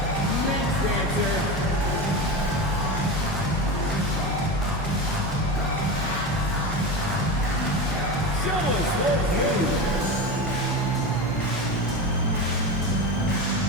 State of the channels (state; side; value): normal; both; correlation 0.23